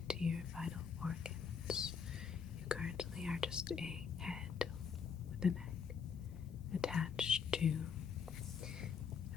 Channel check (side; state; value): right; quieter; 6.5 dB